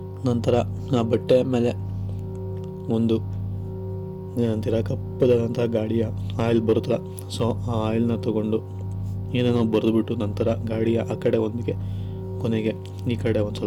ನಂತರ ಆ ಬಟ್ಟೆ ಮೇಲೆ ಒಂದು ಏನಂತೀರ ಕಪ್ಪದಾದಂತಹ ಗಾಡಿಯ ಆಯಿಲ್ ಬರುತ್ತಲ್ಲ, ಸೊ ಆ ಆಯಿಲ್ನ ತೊಗೊಂಡು ಏನೇನೋ ಬರೆದುಬಿಟ್ಟು ನಂತರ ಗಾಡಿಯ ಆ ಕಡೆ ಒಂದಿಗೆ ಕೊನೆಗೆ ಈ ಕಡೆ ಒಂದು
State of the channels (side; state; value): both; identical; correlation 1.00